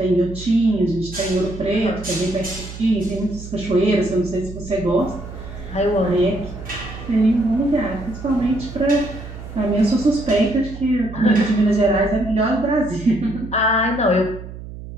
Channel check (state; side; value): noise; right; hum, 12 dB below the sound